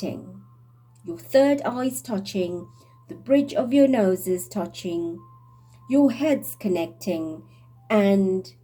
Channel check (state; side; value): identical; both; correlation 1.00